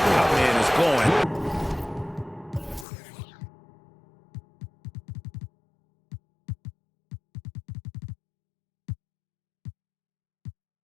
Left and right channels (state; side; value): drops out; right; at 2.9 s